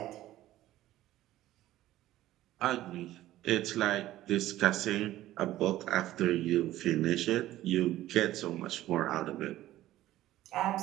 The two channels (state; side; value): quieter; left; 14.7 dB